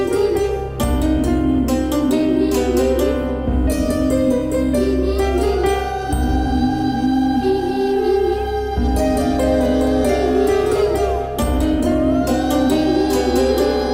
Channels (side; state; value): both; identical; correlation 1.00